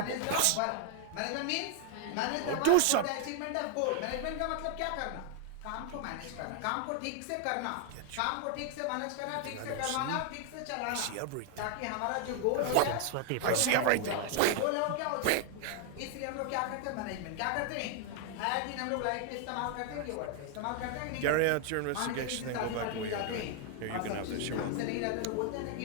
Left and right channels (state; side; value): different; both; correlation 0.00